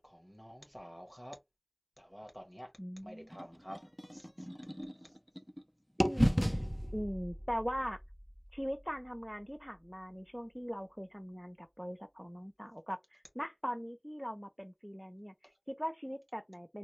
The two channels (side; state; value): both; identical; correlation 1.00